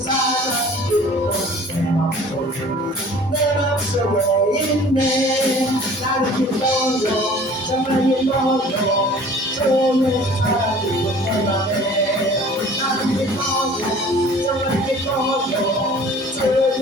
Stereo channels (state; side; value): normal; both; correlation 0.48